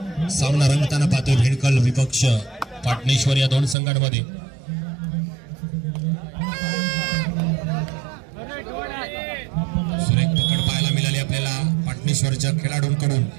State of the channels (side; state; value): left; drops out; at 3.8 s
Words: सामना रंगताना पाहतोय भेडकल विपक्ष पाटणेश्वर या दोन संघांमध्ये. सुरेख पकड पाहायला मिळाली आपल्याला पाटणेश्वरच्या खेळाडूंकडून.